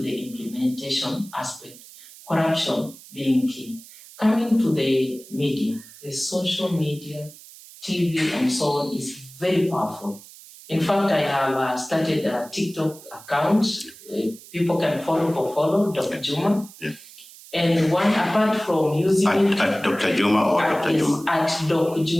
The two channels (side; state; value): right; noise; hiss, 20 dB below the sound